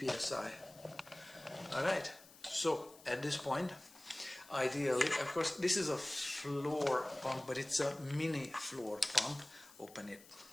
psi. Alright, so at this point, ideally, of course this is a floor pump, but it's a mini floor pump. Open it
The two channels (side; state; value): left; noise; hiss, 22 dB below the sound